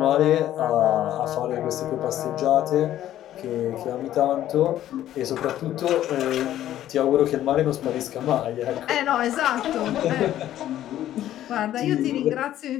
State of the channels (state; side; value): quieter; right; 12.5 dB